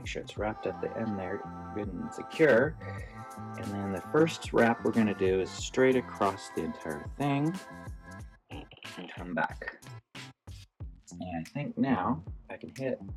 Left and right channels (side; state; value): both; identical; correlation 1.00